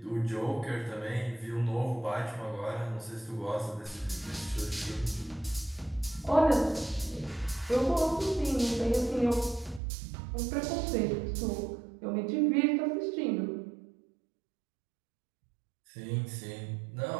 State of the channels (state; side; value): drops out; left; at 9.8 s